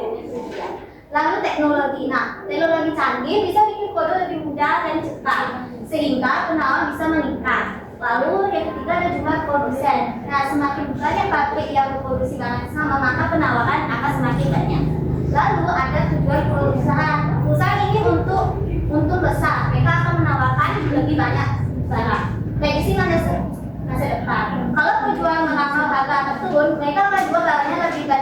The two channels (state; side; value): identical; both; correlation 1.00